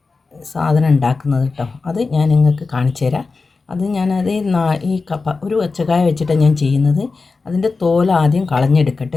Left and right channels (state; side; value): quieter; right; 4.2 dB